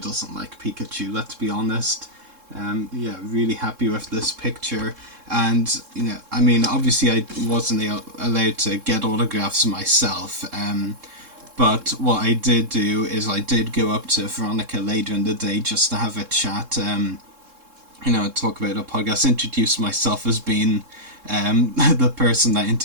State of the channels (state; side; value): late; left; 3.7 ms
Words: like Pikachu, let's be honest. Yeah, really happy with this picture. And you know, I mean, obviously I wasn't allowed to get autographs myself, but what I did do is I did go up to Veronica later in the day just to have a chat, you know, talk about a podcast, introduce myself as being the person that